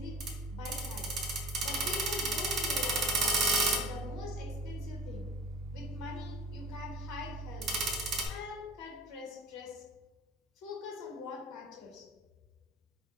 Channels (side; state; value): both; normal; correlation 0.40